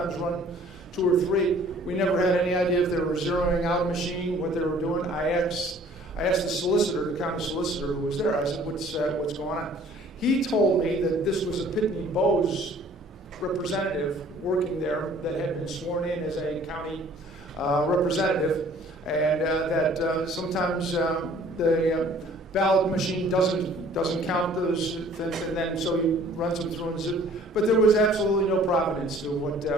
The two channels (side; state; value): both; normal; correlation 0.54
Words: run 2 or 3. We never had any idea if they were zeroing out a machine, what they were doing. I asked the solicitor, the county solicitor who was there, I said, what's going on? He told me that this was a Pitney Bowes representative working there that had been sworn in as a county representative, and that sometimes the ballot machine doesn't count those things, and then so he runs them through. But there was absolutely no provenance to